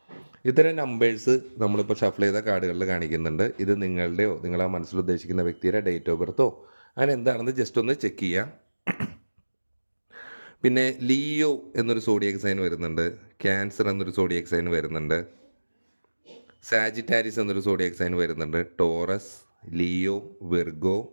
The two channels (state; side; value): inverted; both; correlation -1.00